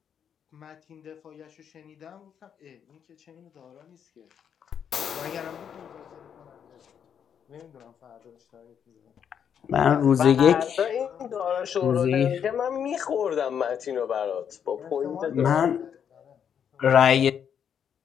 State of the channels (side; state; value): right; quieter; 8.2 dB